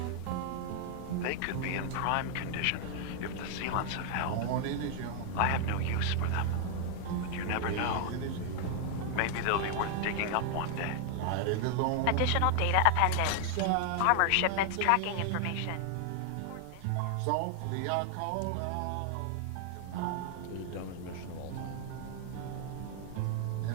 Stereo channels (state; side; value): different; both; correlation 0.00